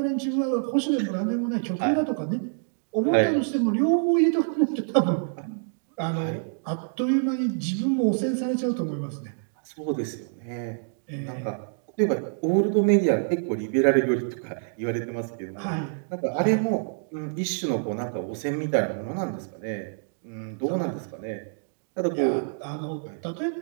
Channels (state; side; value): silent; left; digital silence